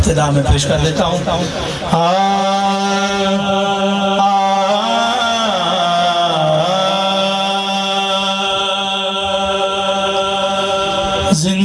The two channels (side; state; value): both; identical; correlation 1.00